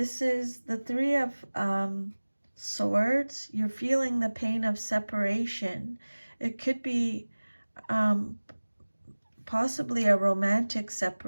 is the Three of Swords. You're feeling the pain of separation. It could be possibly a romantic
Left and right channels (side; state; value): both; inverted; correlation -1.00